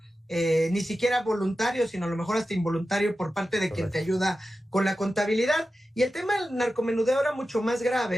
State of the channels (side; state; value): both; normal; correlation 0.93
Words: ni siquiera voluntario, sino a lo mejor hasta involuntario por parte de quien te ayuda con la contabilidad. Y el tema del narcomenudeo era mucho más